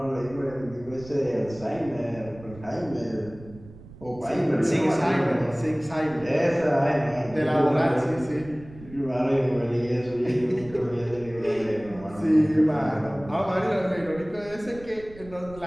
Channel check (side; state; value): right; noise; rumble, 19 dB below the sound